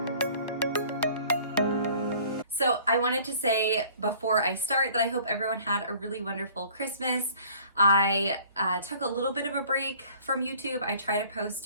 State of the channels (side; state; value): both; inverted; correlation -0.52